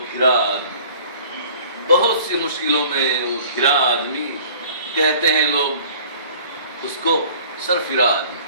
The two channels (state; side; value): inverted; both; correlation -0.50